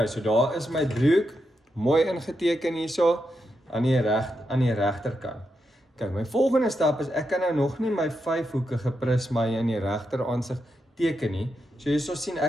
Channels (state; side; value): normal; both; correlation 0.85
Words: so daar is my driehoek, mooi ingeteken hierso, aan die regterkant. Okay, my volgende stap is, ek kan nou nog nie my 5-hoekige prisma hier in die regteraansig teken nie. So hierso sien